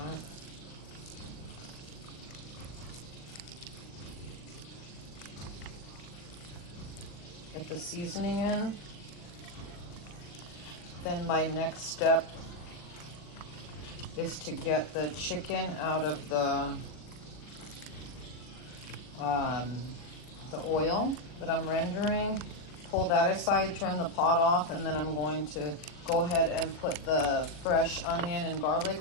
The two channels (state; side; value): late; right; 40 ms